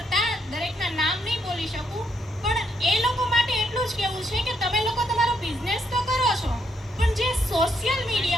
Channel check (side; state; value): both; normal; correlation 0.75